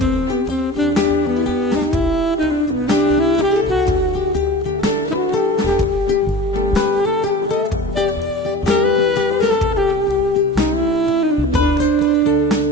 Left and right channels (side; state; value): both; normal; correlation 0.38